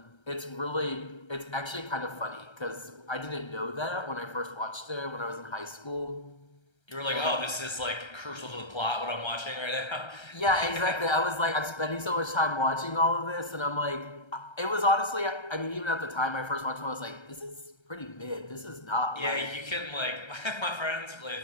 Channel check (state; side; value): late; right; 1.3 ms